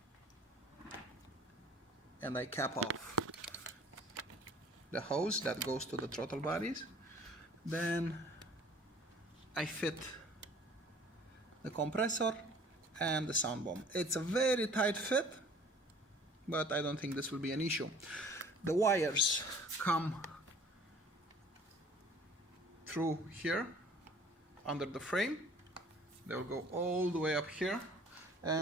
and I cap off the hose that goes to the throttle bodies. Then I fit the compressor and the sound bomb. It's a very tight fit, but I don't think this will be an issue. The wires come through here under the frame. They will go all the way up here,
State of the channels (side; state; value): both; normal; correlation 0.51